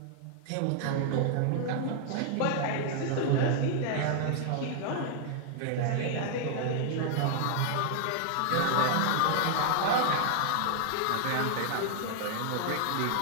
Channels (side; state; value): both; different; correlation 0.00